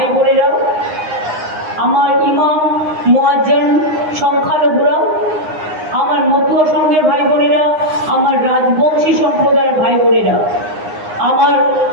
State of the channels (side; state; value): left; late; 9.7 ms